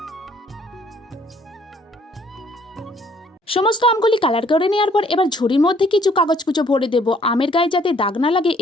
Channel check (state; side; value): normal; both; correlation 0.62